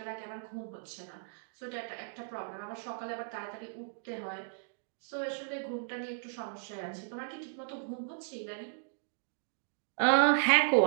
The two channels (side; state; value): left; silent; digital silence